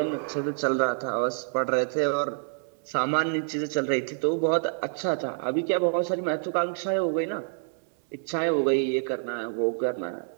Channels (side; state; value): left; silent; digital silence